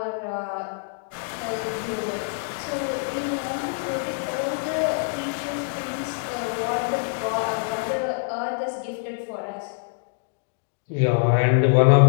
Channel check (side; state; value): right; silent; digital silence